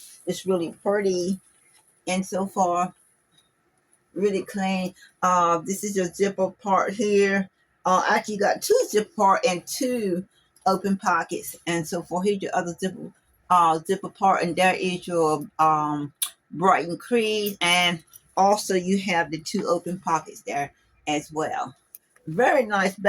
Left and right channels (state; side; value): identical; both; correlation 1.00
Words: It's really pretty and so far really clean. This is your zipper part here. Actually you got two zipper part and two open pockets and so forth. Here's your other zipper part, and there is your Brighton crease, and also you have the two open pockets there as well. Very nice